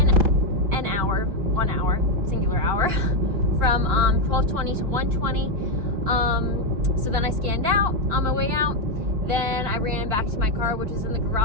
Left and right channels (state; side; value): late; left; 4.8 ms